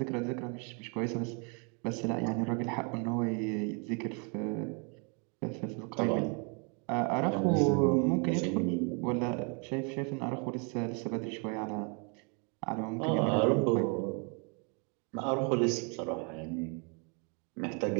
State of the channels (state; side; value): quieter; left; 35.9 dB